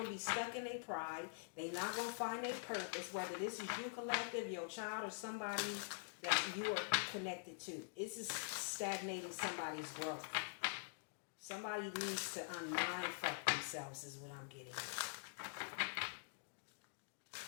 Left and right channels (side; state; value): right; silent; digital silence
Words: to be stuck in their pride. They're not going to find their purpose, whether this is you collective, your child, or somebody that you are connected to. It's just stagnating somebody's growth. Somebody needs to unmindfuck themselves is what I'm getting.